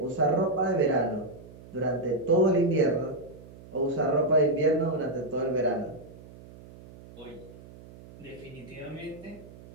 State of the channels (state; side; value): noise; right; hum, 19 dB below the sound